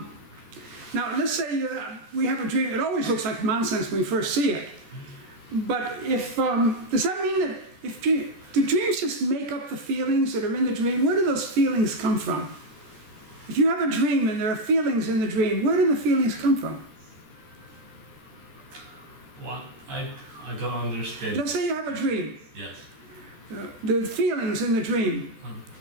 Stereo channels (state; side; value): late; left; 14 ms